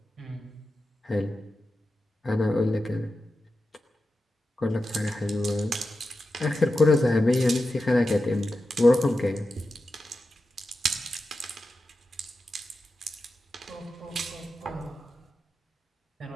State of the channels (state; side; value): normal; both; correlation 0.91